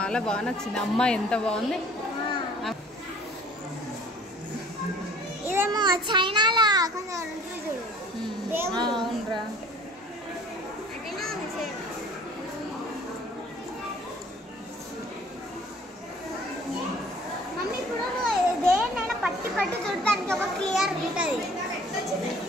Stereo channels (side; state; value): both; normal; correlation 0.52